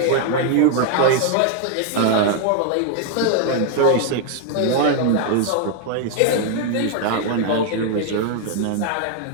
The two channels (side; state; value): both; different; correlation 0.01